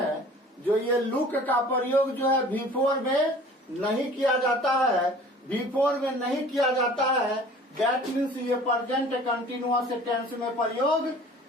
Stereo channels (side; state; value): both; normal; correlation 0.47